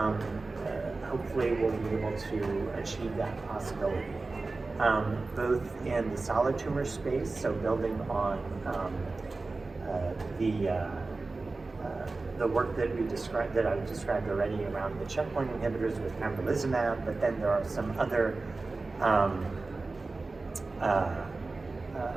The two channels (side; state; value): left; quieter; 3.6 dB